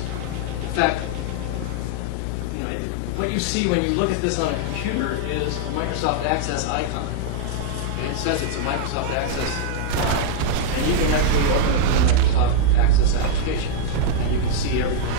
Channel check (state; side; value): different; both; correlation -0.01